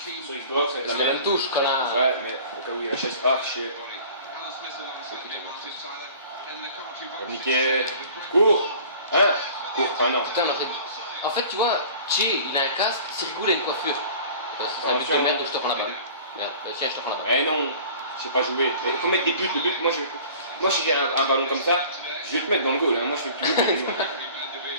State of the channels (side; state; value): both; inverted; correlation -0.45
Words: sur Xbox avec la C'est la même même. touche, connard. Ouais, mais au cas où il y a la chaise. Ah, chier. Niqué. Cours. Hein? Cours, ah non. Putain, on aurait... En fait, tu vois, Chi, il a un casque, Sirgou, il a une coiffure. C'est un but de merde, donc je te prends la balle. Merde, tiens, je te prends la balle. Mais non, je sais pas jouer. Il faut mettre des buts, le but, moi si j'ai un ballon comme ça, je vais te mettre dans le goal, hein. Moi je fais plus de buts.